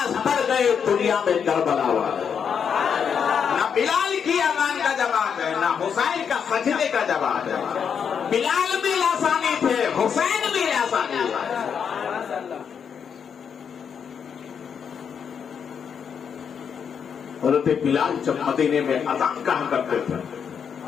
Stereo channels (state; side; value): quieter; right; 7.2 dB